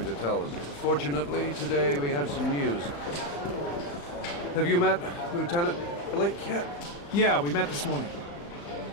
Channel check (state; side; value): late; right; 35 ms